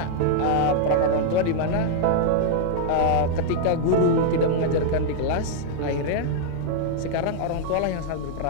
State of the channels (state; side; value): different; both; correlation -0.01